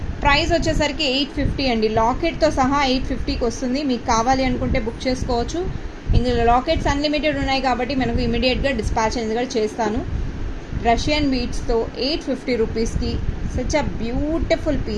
ప్రైస్ వచ్చేసరికి 850 అండి. లాకెట్తో సహా 850కి వస్తుంది. మీకు కావాలి అనుకుంటే బుక్ చేసుకోవచ్చు. ఇందులో లాకెట్స్ అన్లిమిటెడ్ ఉన్నాయి కాబట్టి మనకు ఇమీడియట్గా డిస్పాచ్ అనేది కూడా చేస్తాను. రష్యన్ బీట్స్తో 850 రూపీస్కి సచ్ అ బ్యూటిఫుల్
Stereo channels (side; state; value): both; identical; correlation 1.00